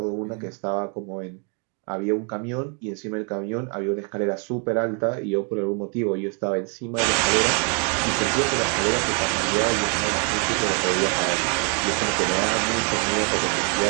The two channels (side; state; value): left; quieter; 38.4 dB